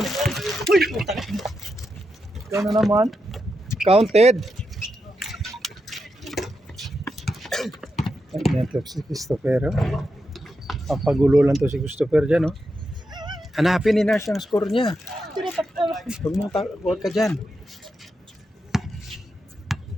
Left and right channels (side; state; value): both; normal; correlation 0.86